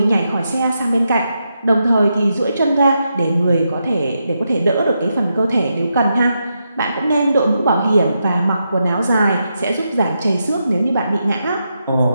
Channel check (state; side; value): inverted; both; correlation -0.84